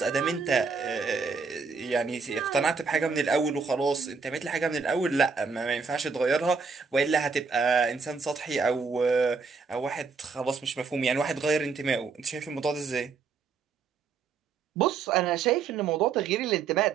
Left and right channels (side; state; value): left; quieter; 5.0 dB